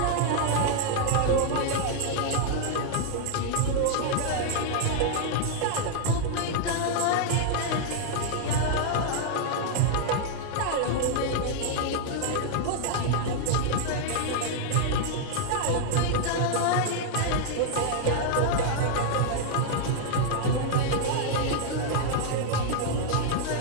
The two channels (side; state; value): both; different; correlation -0.01